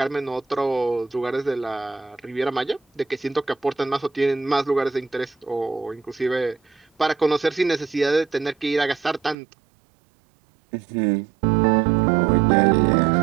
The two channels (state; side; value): drops out; left; at 9.3 s